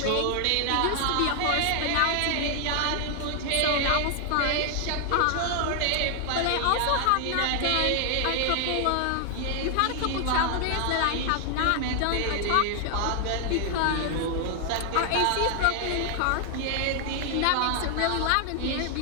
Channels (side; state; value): both; different; correlation 0.00